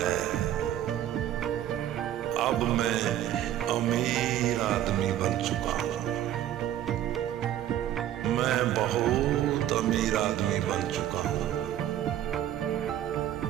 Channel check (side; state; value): left; quieter; 12.0 dB